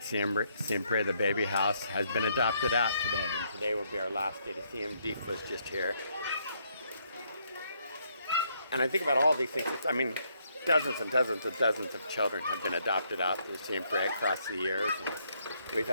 Siempre, the baby house, has been adopted out today, and today will be our last day to see him. Deef was just here. And I think about all these things. Dozens and dozens and dozens of children have been adopted out to Siempre across the years. And we've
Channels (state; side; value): inverted; both; correlation -0.72